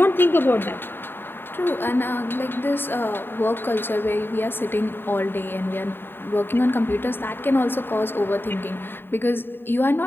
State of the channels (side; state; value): right; late; 0.10 ms